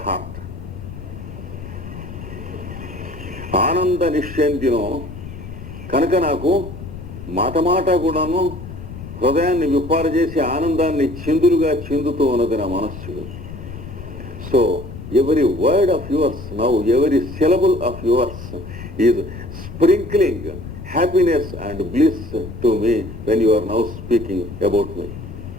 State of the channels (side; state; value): left; noise; rumble, 11 dB below the sound